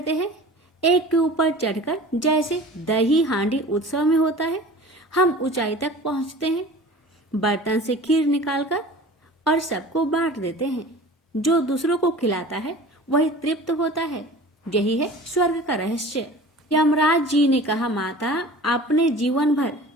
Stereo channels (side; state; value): both; normal; correlation 0.41